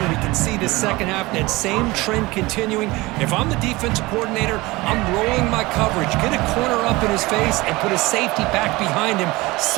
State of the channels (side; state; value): left; quieter; 21.5 dB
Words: we can see the second half, that same trend continuing. If I'm the defensive coordinator, I'm rolling my coverage, get a corner up in his face, and put a safety back behind him.